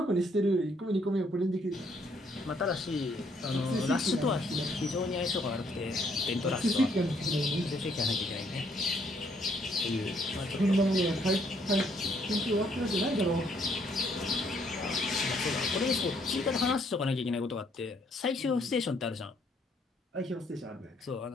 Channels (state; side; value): normal; both; correlation 0.68